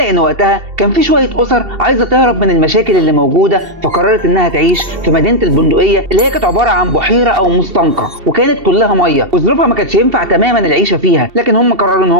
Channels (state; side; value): late; left; 2.7 ms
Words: وقتها كان في شوية أسر عايزة تهرب من المشاكل اللي موجودة، فقررت إنها تعيش في مدينة البندقية اللي هي كانت عبارة عن بحيرة أو مستنقع وكانت كلها مية، وظروفها ما كانتش ينفع تماما العيشة فيها، لكن هم قرروا إن